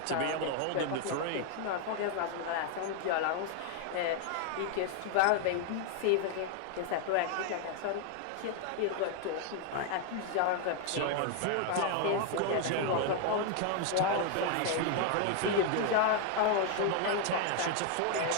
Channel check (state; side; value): different; both; correlation 0.00